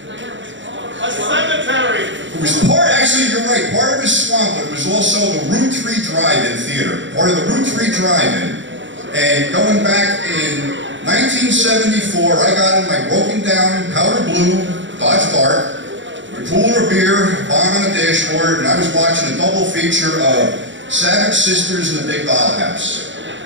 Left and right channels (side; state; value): left; late; 0.54 ms